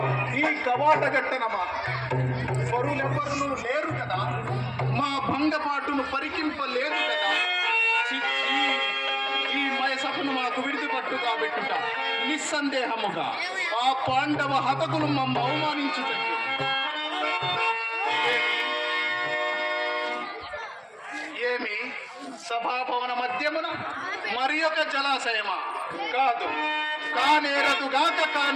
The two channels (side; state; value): both; identical; correlation 1.00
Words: ఈ కవాట గట్టనమా? పరులెవ్వరును లేరు కదా, మా భంగపాటును పరికింపలేదు కదా. ఈ మయసభను మాకు విడిదిపట్టు కాబెట్టుట నిస్సందేహముగా ఆ పాండవ హతకులు మమ్మ అవమానించుటట్టు. ఏమి సభాభవన మధ్యమున మరి ఒక జలాశయమా? కాదు,